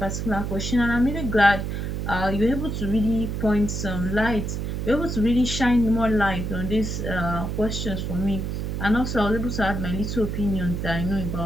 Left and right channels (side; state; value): right; noise; hum, 3 dB below the sound